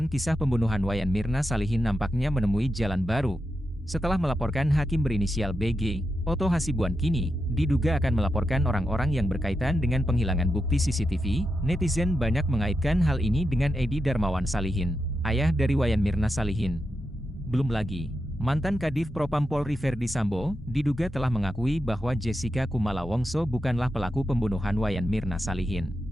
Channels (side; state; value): both; normal; correlation 0.87